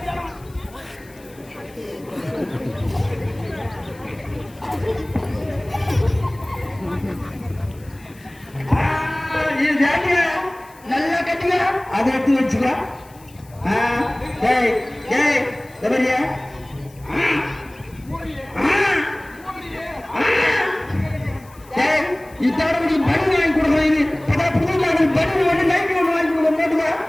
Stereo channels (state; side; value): noise; left; hiss, 26 dB below the sound